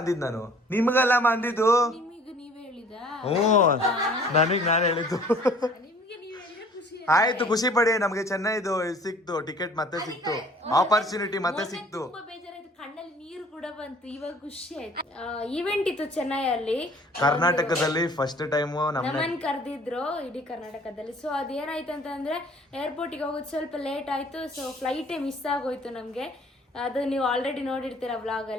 ಅಂದಿದ್ ನಾನು, ನಿಮ್ಗಲ್ಲ ಅಂದಿದ್ದು. ನಿಮಗೆ ನೀವೇ ಹೇಳಿದ? ನನಗ್ ನಾನು ಹೇಳಿದ್ದು. ನಿಮ್ಗೆ ನೀವ್ ಹೇಳಿದ್ರೆ ಖುಷಿ ಆಯ್ತು, ಖುಷಿ ಪಡಿ. ನಮ್ಗೆ ಚೆನ್ನೈದು ಸಿಕ್ತು ಟಿಕೆಟ್, ಮತ್ತೆ ಸಿಕ್ತು ಆಪರ್ಚುನಿಟಿ, ಮತ್ತೆ ಸಿಕ್ತು. ತುಂಬಾ ಬೇಜಾರಾಯ್ತು, ಕಣ್ಣಲ್ಲಿ ನೀರು ಕೂಡ ಬಂತು. ಇವಾಗ ಖುಷಿ ಆಯ್ತು. ಈವೆಂಟ್ ಇತ್ತು ಚೆನ್ನೈಯಲ್ಲಿ, ಕರ್ನಾಟಕದಲ್ಲಿ ಫಸ್ಟ್ ಟೈಮ್ ನಮ್ಮನ್ ಕರೆದಿದ್ರು ಇಡೀ ಕರ್ನಾಟಕದಲ್ಲಿ. ಸೊ ಅದೇನಾಯ್ತು ಅಂತಂದ್ರೆ, ಏರ್ಪೋರ್ಟಿಗೆ ಹೋಗೋದು ಸ್ವಲ್ಪ ಲೇಟ್ ಆಯ್ತು. ಸೊ ಫ್ಲೈಟೇ ಮಿಸ್ ಆಗೋಯ್ತು ನಮ್ಗೆ. ಅದು ನೀವು ಆಲ್ರೆಡಿ ನೋಡಿರ್ತೀರ ವ್ಲಾಗ್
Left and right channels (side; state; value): both; normal; correlation 0.53